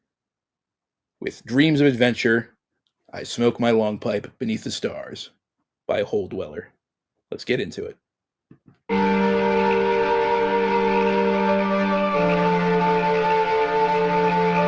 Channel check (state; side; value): identical; both; correlation 1.00